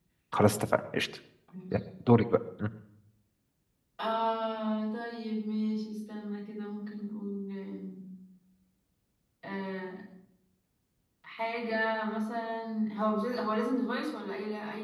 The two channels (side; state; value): both; identical; correlation 1.00